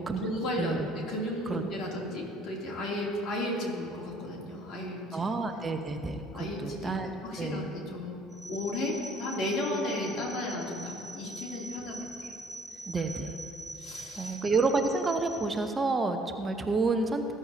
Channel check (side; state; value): both; normal; correlation 0.60